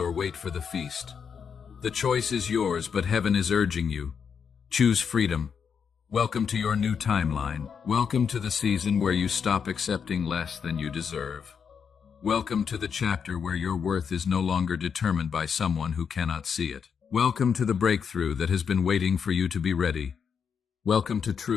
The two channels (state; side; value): quieter; right; 6.7 dB